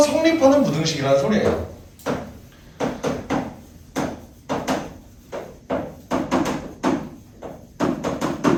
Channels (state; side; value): identical; both; correlation 1.00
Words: 성립하는 부등식이라는 소리예요.